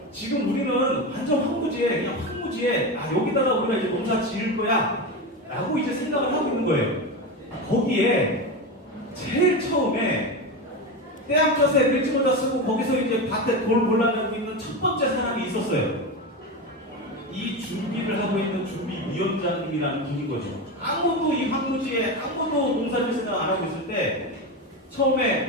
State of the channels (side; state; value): both; normal; correlation 0.19